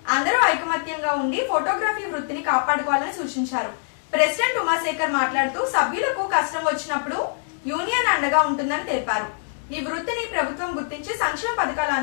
అందరూ ఐకమత్యంగా ఉండి ఫోటోగ్రఫీ వృత్తిని కాపాడుకోవాలని సూచించారు। ప్రెసిడెంట్ ఉమాశేఖర్ మాట్లాడుతూ సభ్యులకు కష్టం వచ్చినప్పుడు యూనియన్ అండగా ఉంటుందని తెలిపారు। ఈ వృత్తిని ప్రభుత్వం గుర్తించి సంక్షేమ పథకాలు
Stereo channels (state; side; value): silent; right; digital silence